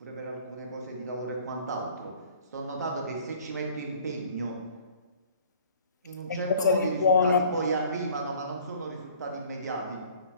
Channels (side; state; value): both; inverted; correlation -0.52